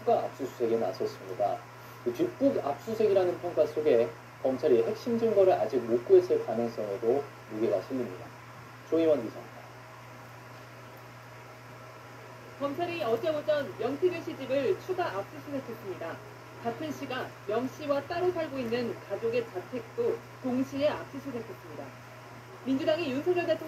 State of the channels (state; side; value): identical; both; correlation 1.00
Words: 압수수색에 나섰습니다. 뒷북 압수수색이라는 평가 속에 검찰이 핵심 증거를 아직 못 구했을 가능성에도 무게가 실립니다. 조희원 기자입니다. 검찰이 어제 오전 명태균 씨 집을 추가 압수수색했습니다. 같은 시각 명 씨와 따로 살고 있는 가족의 자택도 동시에 압수수색했습니다. 민주당이 윤석열